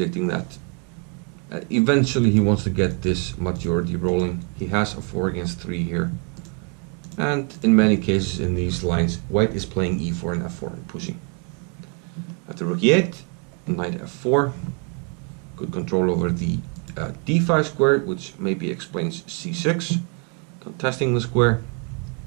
that eventually he wants to get this majority rolling. He has a 4 against 3 here. And in many cases in these lines, white is playing e4 and f4 and pushing. After rook e8, knight f4. Good control over the d5 square, which maybe explains c6. Contesting the square.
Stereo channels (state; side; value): quieter; left; 37.0 dB